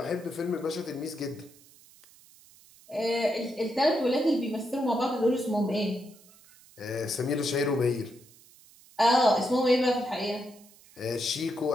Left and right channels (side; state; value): right; noise; hiss, 25 dB below the sound